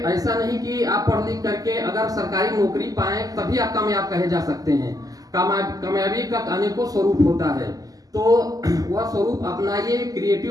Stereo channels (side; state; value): left; late; 0.17 ms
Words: नहीं कि आप पढ़ लिख करके अगर सरकारी नौकरी पाएं तभी आप कामयाब कहे जा सकते हैं। कामयाबी का अनेकों स्वरूप होता है, तो वह स्वरूप अपनाइए,